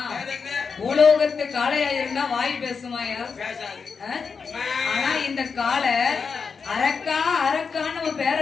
பூலோகத்து காளையா இருந்தா வாய் பேசுமாயா? ஆனா இந்த காளை அரக்கா அரக்கான்னு நம்ம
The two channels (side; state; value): right; quieter; 5.5 dB